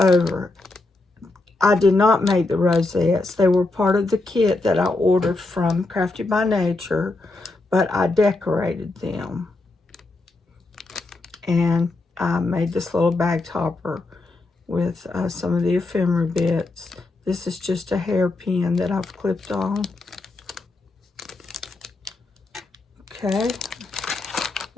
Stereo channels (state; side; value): quieter; right; 3.1 dB